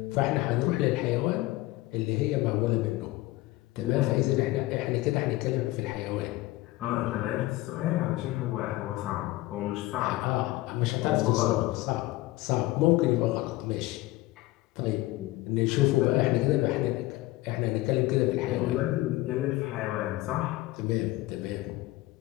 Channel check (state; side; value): quieter; right; 18.5 dB